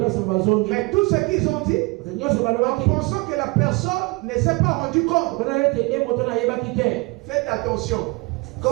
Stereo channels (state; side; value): quieter; left; 26.4 dB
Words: Mais tout ce qu'ils ont dit, en pensant que la personne ne s'est pas rendu compte. Faites attention.